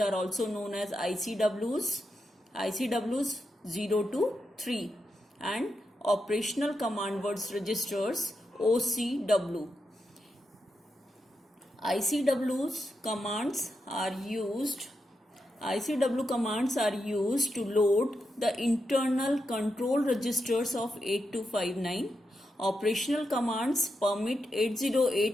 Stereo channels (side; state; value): both; normal; correlation 0.86